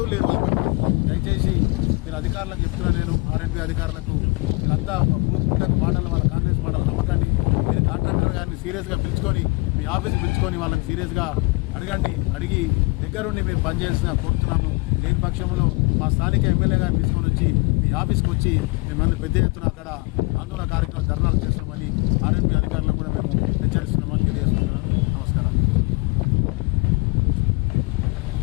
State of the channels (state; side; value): quieter; right; 27.2 dB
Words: లేరు. దయచేసి మీరు అధికారులకు చెప్తున్నాను, నేను ఆర్ఎన్బి అధికారులకు మీరంతా పూర్తిగా మాటలు, వాళ్ళ కాంగ్రెస్ మాటల నమ్మకాన్ని మీరు కాంట్రాక్టర్ గారిని సీరియస్గా పిలుచుకొని మీ ఆఫీస్కి పిలుచుకొని వాళ్ళని సీరియస్గా అడిగి దగ్గరుండి మీరు పనిచేసిన కోరుతున్నాము. లేని పక్షంలో మా స్థానిక ఎమ్మెల్యే గారిని తీసుకొని వచ్చి మీ ఆఫీస్కి వచ్చి మిమ్మల్ని పెద్ద ఎత్తున అక్కడ ఆందోళన కార్యక్రమం ధర్నాలు చేస్తామని